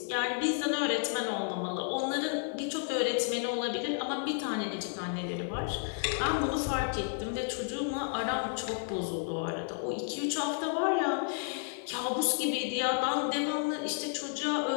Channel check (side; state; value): right; silent; 56 dB below the other